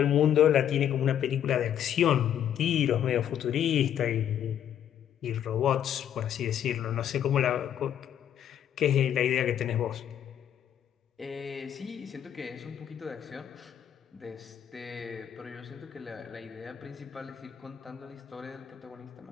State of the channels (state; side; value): quieter; right; 9.8 dB